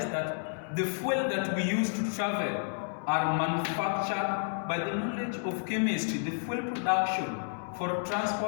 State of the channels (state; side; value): silent; right; digital silence